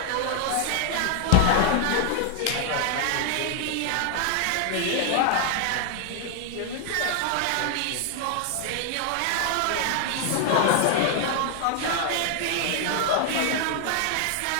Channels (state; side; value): different; both; correlation 0.00